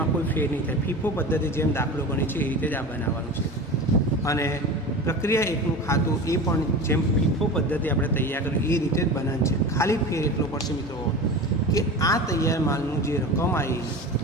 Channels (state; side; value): normal; both; correlation 0.31